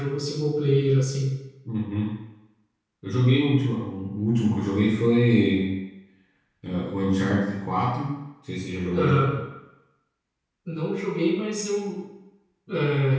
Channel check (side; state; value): both; identical; correlation 1.00